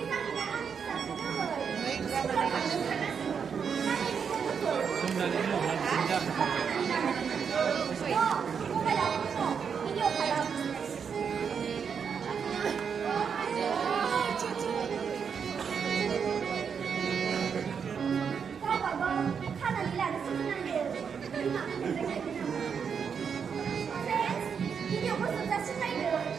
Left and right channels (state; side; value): quieter; left; 6.7 dB